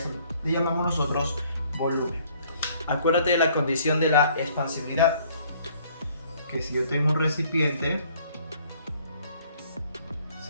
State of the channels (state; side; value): inverted; both; correlation -0.60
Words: le llamamos nosotros volumen. Acuérdate de la condición de la expansibilidad, que si yo tengo un recipiente,